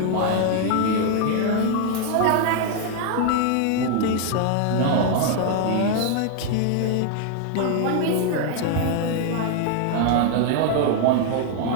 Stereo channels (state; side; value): different; both; correlation 0.00